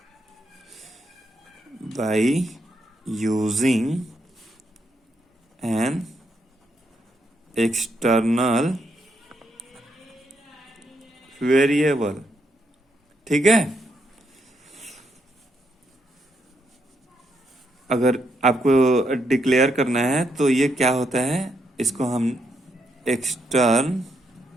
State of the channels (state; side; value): normal; both; correlation 0.78